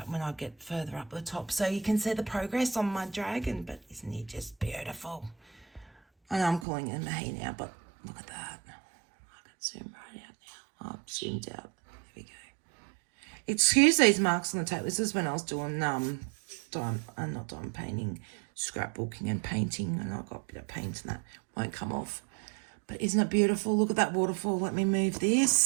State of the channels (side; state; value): left; drops out; at 6.7 s